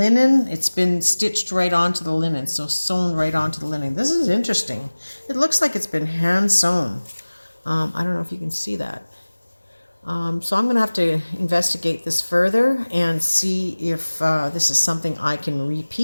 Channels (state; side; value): inverted; both; correlation -1.00